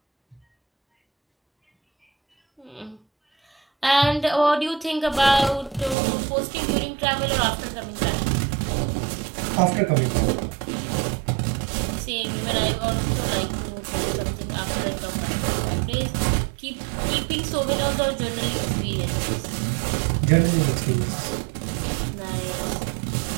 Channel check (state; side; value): drops out; left; at 6.0 s